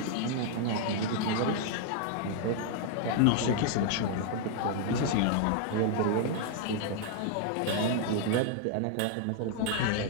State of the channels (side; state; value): both; different; correlation 0.00